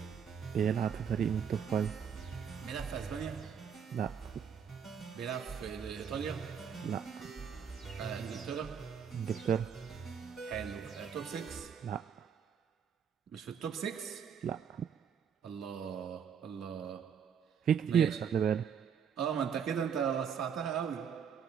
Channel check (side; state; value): left; quieter; 7.4 dB